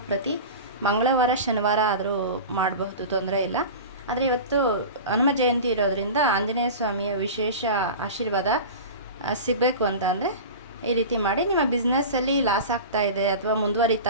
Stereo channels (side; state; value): both; inverted; correlation -0.31